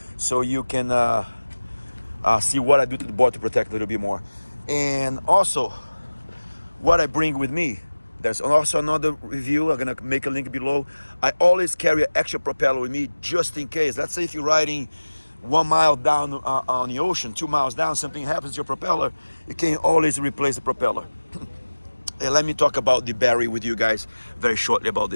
so you can see what I do to the board to protect a little bit more. And also, what I bring with me. There's also another review, I'm gonna make a link below. I always carry an extra propeller with me just in case. Let's say if you're riding 1 mile down on the ocean, 2 miles down, something happens to your propeller, you can always replace the propeller. And let me talk about the battery with you guys very shortly about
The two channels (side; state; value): both; inverted; correlation -1.00